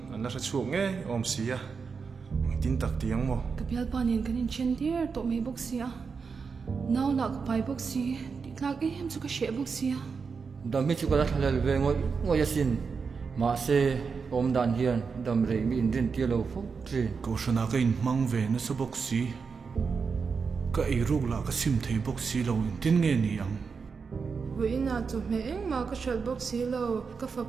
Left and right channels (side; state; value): left; quieter; 5.4 dB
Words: anh là chuộc nghe om xí à tin tắc tiếng mò cái bial panin cái chen tier to me box sia now la cái pai box si ti tlak em chu ka she box sia đam mi chu ka thalal ve ngoi yasin ma se om dan hian dam rei mi in rin tia lo fo tri câu shana cái in mang về nó số box xí cái ai ruk là cái sim thấy box xí lâu in tin nghe ni ang với na chu me eng ma ka shal box si lo ka fa